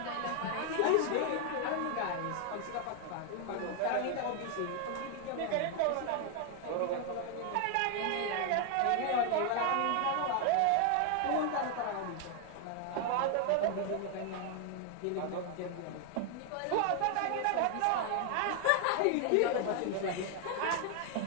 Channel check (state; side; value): different; both; correlation 0.00